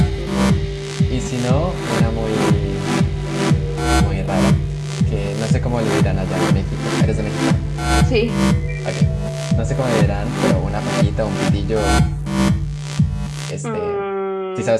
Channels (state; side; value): identical; both; correlation 1.00